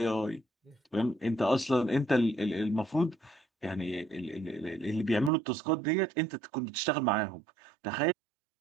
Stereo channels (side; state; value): left; drops out; at 5.3 s